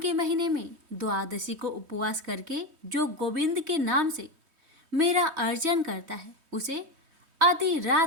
महीने में द्वादशी को उपवास करके जो गोविंद के नाम से मेरा अर्चन करता है, उसे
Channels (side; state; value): left; late; 3.2 ms